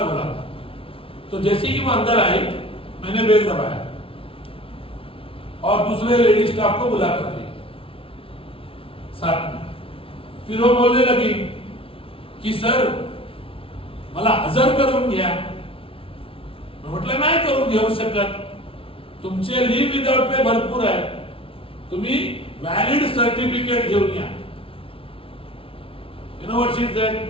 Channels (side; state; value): right; late; 0.26 ms